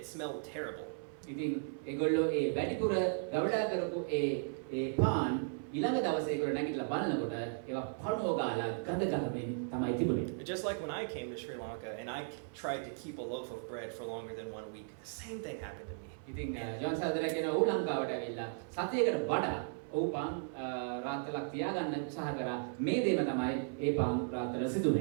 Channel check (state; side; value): silent; left; 54 dB below the other